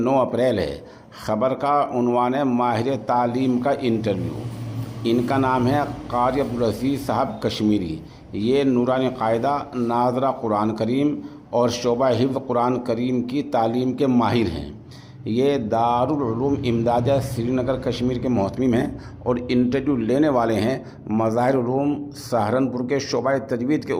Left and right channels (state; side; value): identical; both; correlation 1.00